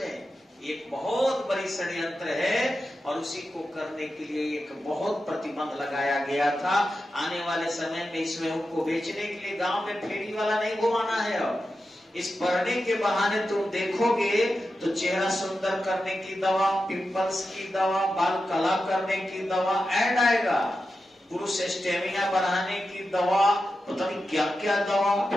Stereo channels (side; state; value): both; normal; correlation 0.91